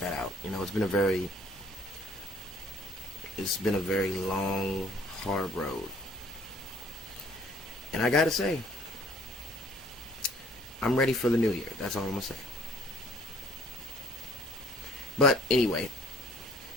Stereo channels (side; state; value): both; normal; correlation 0.58